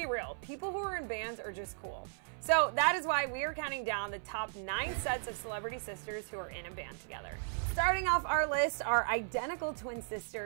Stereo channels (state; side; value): silent; left; 54 dB below the other